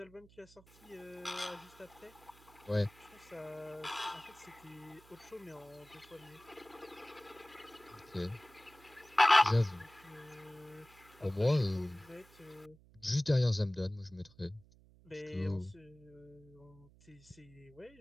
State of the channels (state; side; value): noise; right; hum, 25 dB below the sound